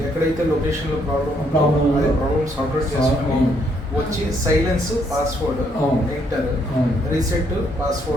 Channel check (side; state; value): both; normal; correlation 0.71